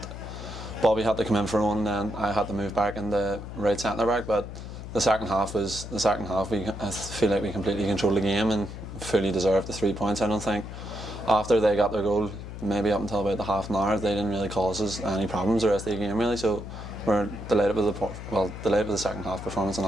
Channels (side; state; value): left; noise; hum, 10 dB below the sound